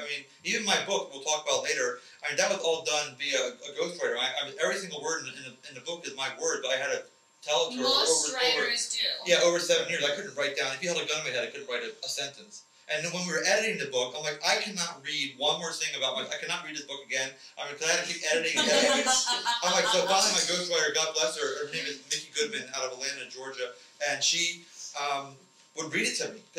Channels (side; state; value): both; identical; correlation 1.00